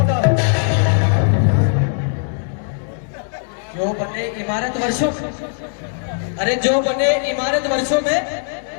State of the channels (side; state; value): right; silent; digital silence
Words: है। जो बने इमारत वर्षों, अरे जो बने इमारत वर्षों में